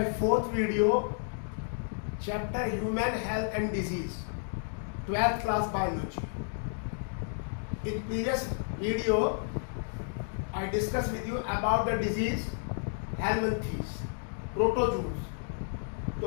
fourth video, chapter Human Health and Disease, 12th class biology. In previous video, I discussed with you about the disease helminthes, प्रोटोजूस. तो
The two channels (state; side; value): silent; right; digital silence